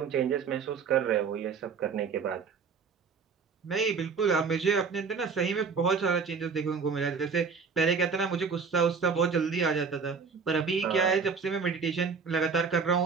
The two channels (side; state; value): left; quieter; 5.5 dB